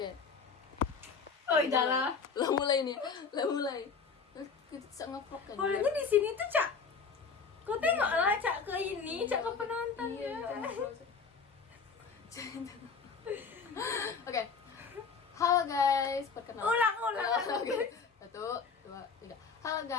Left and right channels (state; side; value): quieter; right; 5.3 dB